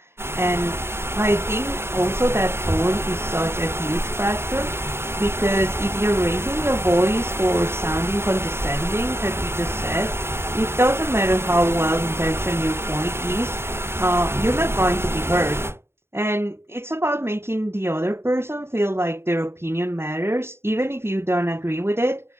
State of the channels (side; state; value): left; late; 0.12 ms